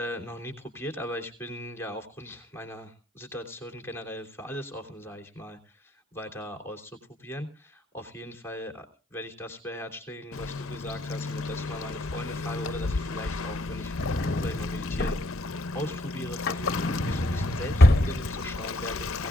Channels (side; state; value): both; normal; correlation 0.70